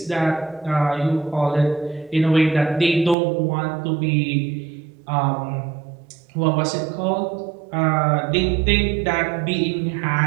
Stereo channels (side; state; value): left; drops out; at 3.2 s